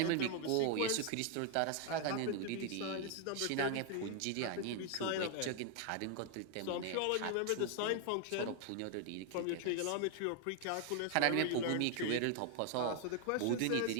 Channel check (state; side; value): different; both; correlation 0.00